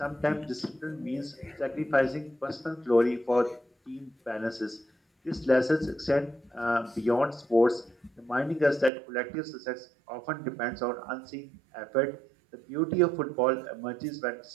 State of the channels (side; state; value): left; drops out; at 8.9 s